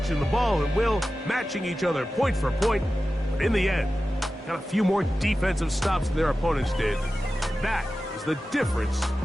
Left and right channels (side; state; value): both; normal; correlation 0.94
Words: the ball at will, matching each other point for point. But in the end, got a few more defensive stops than their opponents did. That is the difference